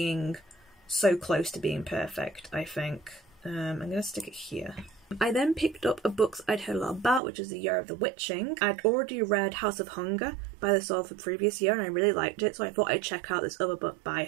so close to being perfect, I think. I'm gonna stick it here. I then picked up a book I'd heard a lot about, which is The Year of the Witching. I'd already read House of Hunger by the author the previous year, and I really liked it, so I thought I'd check out this other book by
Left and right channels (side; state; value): left; drops out; at 7.2 s